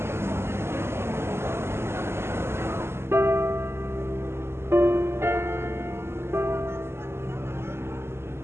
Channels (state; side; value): late; left; 0.12 ms